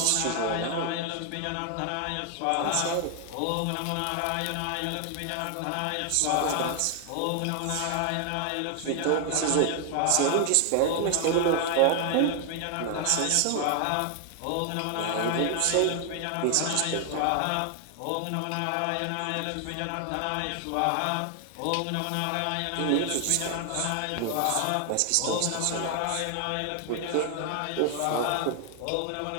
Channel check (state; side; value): different; both; correlation 0.00